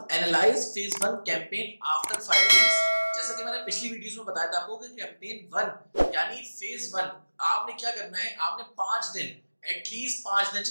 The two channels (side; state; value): both; inverted; correlation -1.00